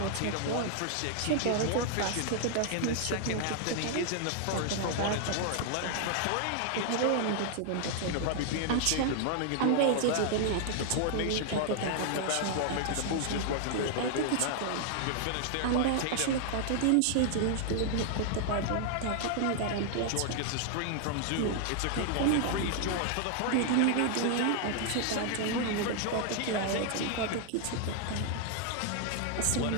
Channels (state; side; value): different; both; correlation 0.00